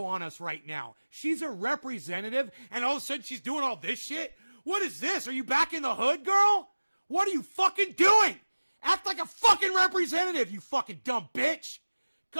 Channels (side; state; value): both; inverted; correlation -1.00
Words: on us right now? She's a representative, and all of a sudden she's doing all this shit? What is this? Are you back in the hood, girl? What are you fucking doing? Act like a fucking representative, you fucking dumb bitch.